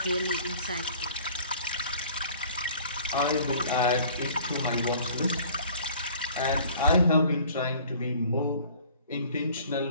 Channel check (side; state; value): both; inverted; correlation -0.51